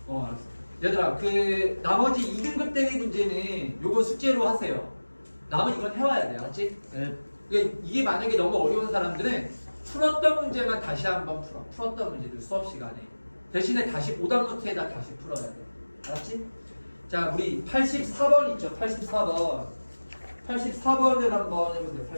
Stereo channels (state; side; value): inverted; both; correlation -1.00